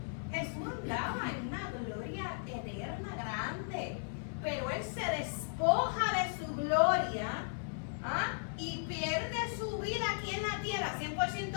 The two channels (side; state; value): right; silent; 54 dB below the other